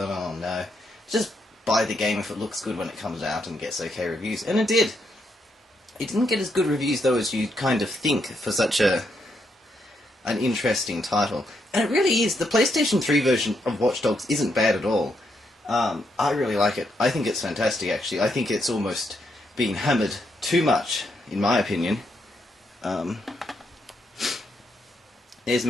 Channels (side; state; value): both; normal; correlation 0.78